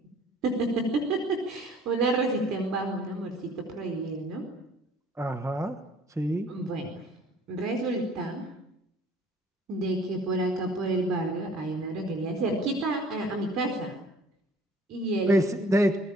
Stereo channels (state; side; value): normal; both; correlation 0.53